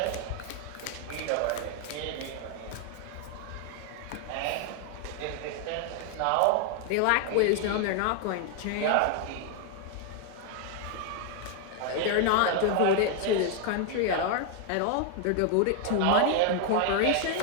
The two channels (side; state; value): both; different; correlation 0.00